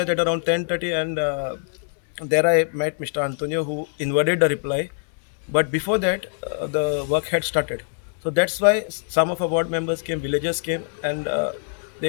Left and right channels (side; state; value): right; silent; digital silence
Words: at around 10:30, and there I met Mr. Antonio, who inverted the reply. But before that, the work had started. So that's why some of our board members came, villagers came, and